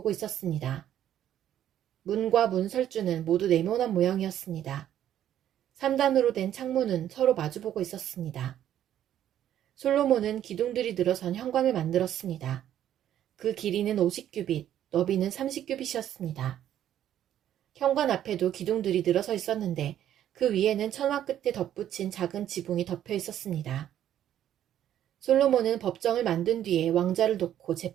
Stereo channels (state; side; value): quieter; left; 11.1 dB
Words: 있었습니다. 문과 문설주는 모두 네모난 모양이었습니다. 3단으로 된 창문은 서로 마주보고 있었습니다. 솔로몬은 기둥들이 늘어선 현관을 만들었습니다. 그 길이는 50규빗, 너비는 30규빗이었습니다. 현관 앞에도 기둥들이 늘어서 있었는데 그 위에는 천막 끝에 덧붙인 작은 지붕이 덮여 있었습니다. 솔로몬은 법정을 만든 뒤에 왕자를 놓고